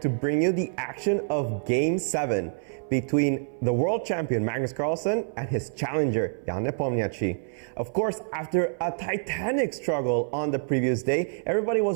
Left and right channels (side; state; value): left; silent; 57 dB below the other